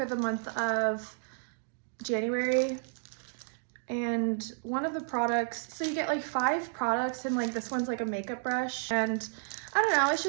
the month of January. And one of the products, so you get like 5 products, and like this one's like a makeup brush. And I don't know, it's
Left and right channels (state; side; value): silent; left; digital silence